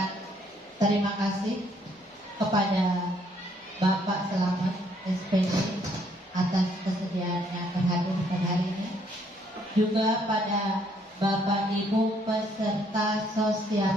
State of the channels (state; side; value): normal; both; correlation 0.67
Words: terima kasih kepada Bapak Selamat SPD atas kesediaannya berhadir pada hari ini, juga pada Bapak Ibu peserta